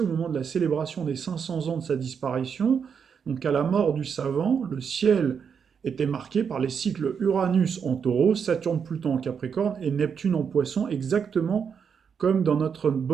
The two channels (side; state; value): left; quieter; 6.8 dB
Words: au moment de la célébration des 500 ans de sa disparition, donc à la mort du savant, le ciel était marqué par les cycles Uranus en taureau, Saturne-Pluton en Capricorne et Neptune en poisson, exactement comme dans notre